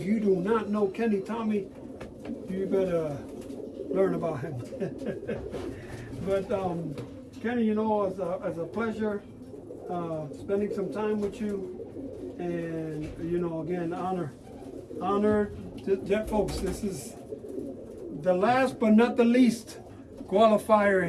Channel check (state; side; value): identical; both; correlation 1.00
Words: you do not know Kenny Tommy, you better learn about him. But Kenny, you know, it's a pleasure spending some time with you. And, you know, again, honor. Folks, this is the last but not the least